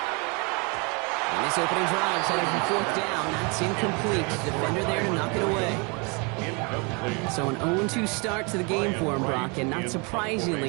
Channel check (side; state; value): left; quieter; 31.7 dB